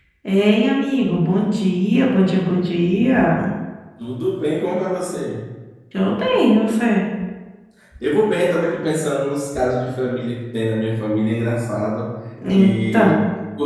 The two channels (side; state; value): both; identical; correlation 1.00